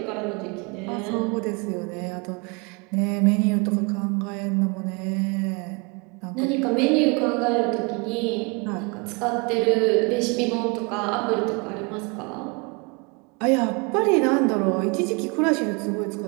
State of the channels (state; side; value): quieter; left; 30.8 dB